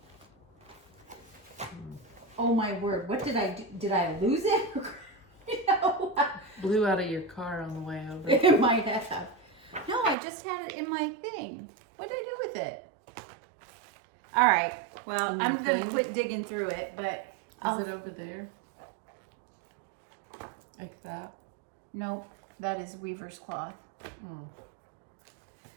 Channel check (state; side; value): drops out; left; at 10.2 s